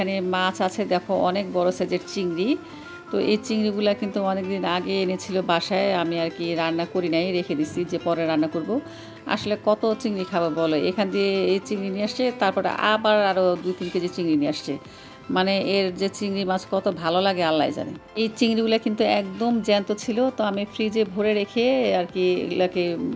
মাছ আছে, দেখো অনেক বড় সাইজের চিংড়ি। তো এই চিংড়িগুলো কিন্তু অনেক দিন আগে এনেছিল বাসায়, আমি আর কি রান্না করি নাই, রেখে দিছি যে পরে রান্না করব। আসলে কত চিংড়ি খাবো বলো, এখান দিয়ে এই চিংড়ি নিয়ে আসছে, তারপরে আবার আরও 2-3 কেজি চিংড়ি নিয়ে আসছে। মানে এর যে চিংড়ি মাছ কত ভালো লাগে আল্লাহ জানে। এই চিংড়িগুলো কিন্তু একদম জ্যান্ত ছিল, তো আমি ফ্রিজে ভরে রেখে আর কি এগুলাকে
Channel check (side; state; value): both; identical; correlation 1.00